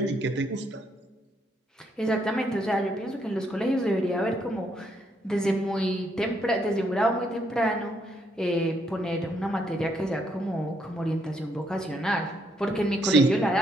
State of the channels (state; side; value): normal; both; correlation 0.73